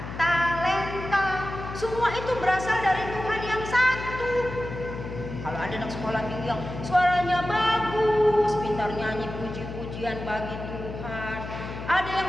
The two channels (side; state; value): left; noise; hum, 9 dB below the sound